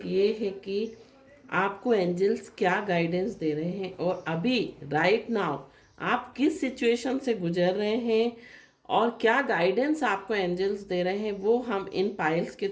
ये है कि आपको एंजल्स क्या गाइडेंस दे रहे हैं और अभी राइट नाउ आप किस सिचुएशन से गुजर रहे हैं और क्या गाइडेंस आपको एंजल्स दे रहे हैं वो हम इन पाइल्स के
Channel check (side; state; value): both; identical; correlation 1.00